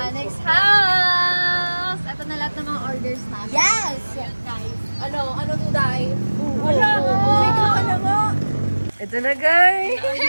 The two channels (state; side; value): inverted; both; correlation -1.00